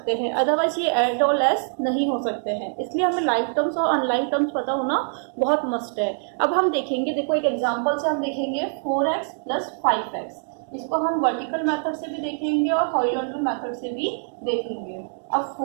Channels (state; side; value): silent; left; 63 dB below the other